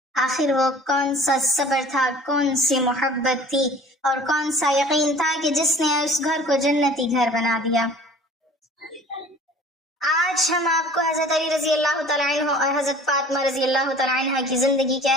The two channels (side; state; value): both; normal; correlation 0.47